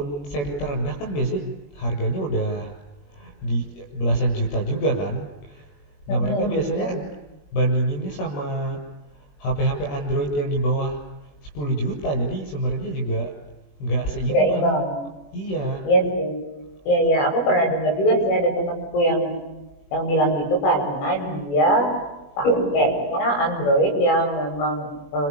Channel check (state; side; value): late; right; 21 ms